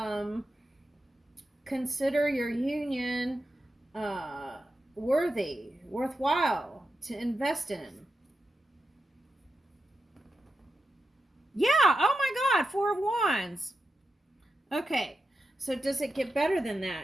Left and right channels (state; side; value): normal; both; correlation 0.88